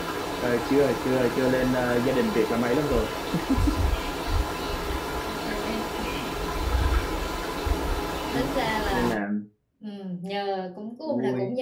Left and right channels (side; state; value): both; identical; correlation 1.00